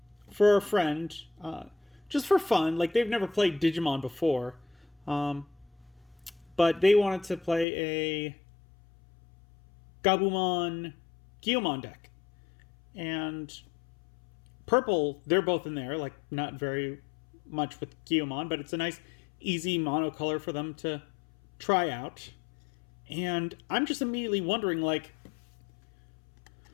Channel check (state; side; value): drops out; right; at 7.7 s